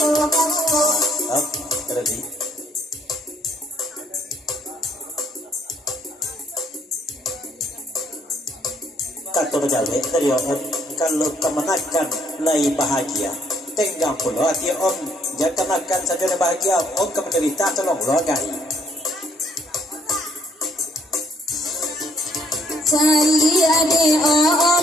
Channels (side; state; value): both; normal; correlation 0.66